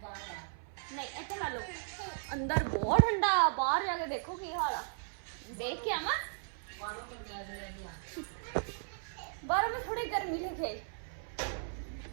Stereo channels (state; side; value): silent; left; 54 dB below the other